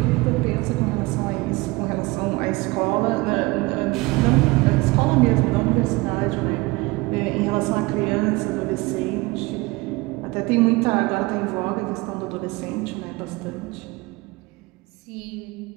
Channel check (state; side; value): quieter; left; 22.9 dB